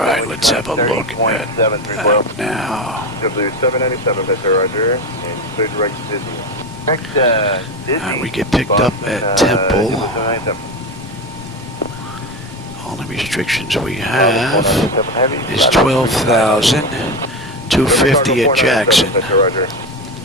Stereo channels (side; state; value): both; normal; correlation 0.20